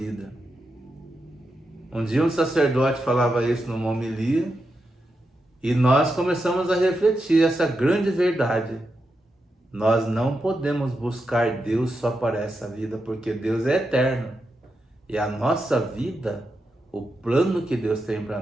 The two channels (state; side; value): normal; both; correlation 0.87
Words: Um dia um sacerdote falava isso numa homilia, e nós começamos a refletir essa grande verdade. Nós não podemos buscar Deus só para essa vida, porque Deus é eterno. E a nossa vida, o plano que Deus tem para